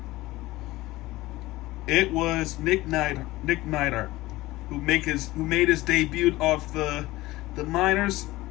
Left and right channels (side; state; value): right; quieter; 18.6 dB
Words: It was Nick Neidhart, who made his debut off the minors.